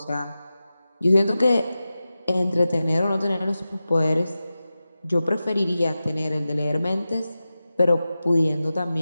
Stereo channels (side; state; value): both; inverted; correlation -0.94